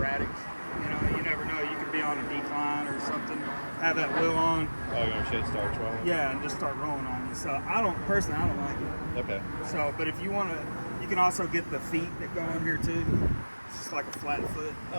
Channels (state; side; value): inverted; both; correlation -1.00